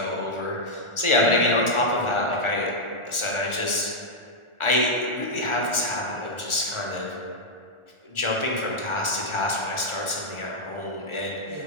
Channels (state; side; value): late; right; 1.4 ms